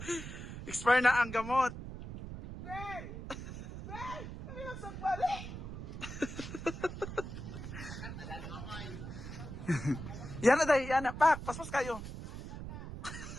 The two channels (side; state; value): right; noise; rumble, 9 dB below the sound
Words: Expire na ang gamot. Ben! Ben! Kami lang sagbalik! Yan na dahil, yan na. Pak, paspas kayo.